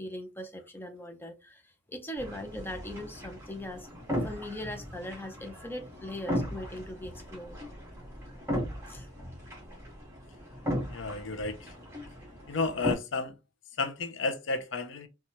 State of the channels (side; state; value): both; normal; correlation 0.31